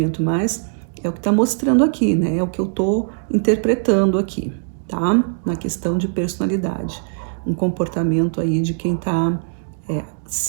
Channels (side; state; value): left; silent; digital silence